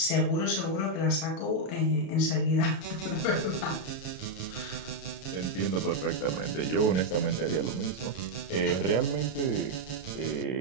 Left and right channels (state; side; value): late; right; 32 ms